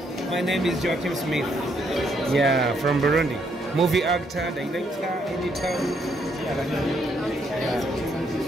My name is Joachim Smith. Yeah, from Burundi. Movie actor, director, editor. Yeah.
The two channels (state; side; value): normal; both; correlation 0.73